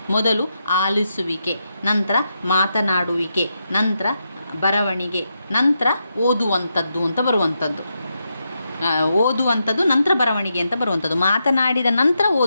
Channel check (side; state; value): both; inverted; correlation -0.84